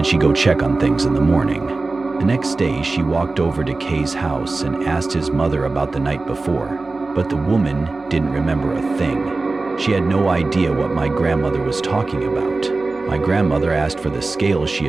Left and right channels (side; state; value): left; quieter; 3.5 dB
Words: she'd go check on things in the morning. The next day, she walked over to Kay's house and asked his mother about the night before, but the woman didn't remember a thing. She had no idea what my grandmother was talking about. My grandmother asked for the scale she